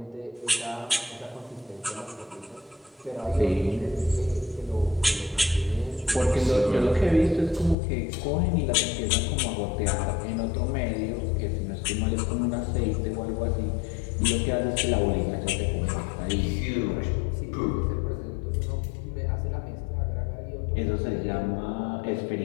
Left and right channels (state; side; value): drops out; right; at 7.8 s